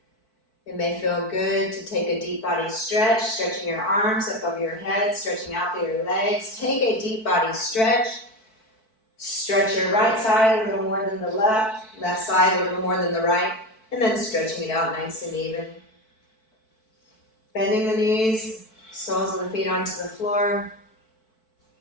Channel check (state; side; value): late; right; 4.6 ms